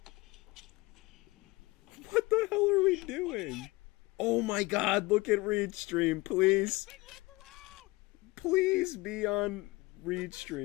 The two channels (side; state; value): right; quieter; 22.1 dB